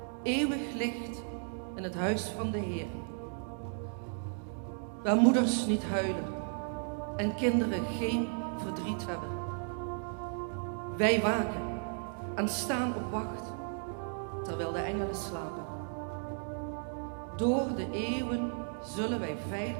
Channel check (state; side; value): silent; left; 55 dB below the other